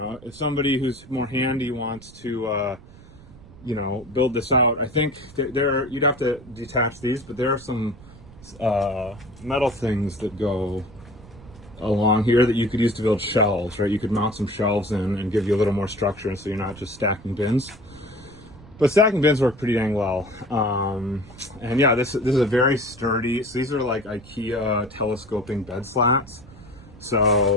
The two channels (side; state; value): right; noise; rumble, 20 dB below the sound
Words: if somebody who's more handy wants to, you know, build this out, I think you'd have to detach these, but there are some metal things that go along here that you could use to build shelves, right? You could mount some shelves in and give you a little more structure, and so you're not just stacking bins. But stacking bins work pretty dang well. And yeah, this is a very sturdy, so these are like IKEA telescoping bed slats.